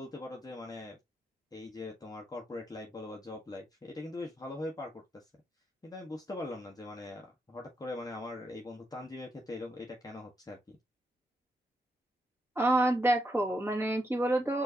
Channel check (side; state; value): both; normal; correlation 0.81